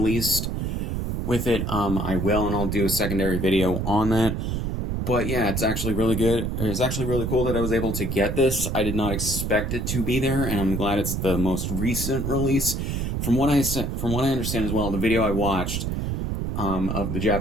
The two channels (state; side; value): noise; right; rumble, 2 dB below the sound